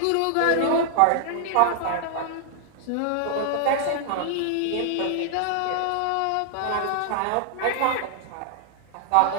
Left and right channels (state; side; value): different; both; correlation 0.00